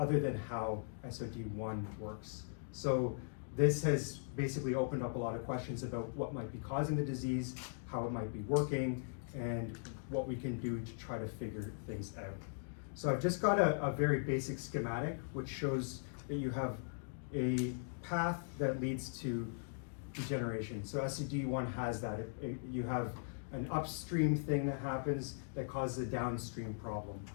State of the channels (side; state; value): right; silent; digital silence